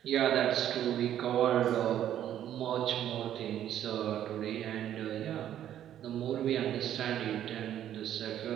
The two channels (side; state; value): left; quieter; 11.0 dB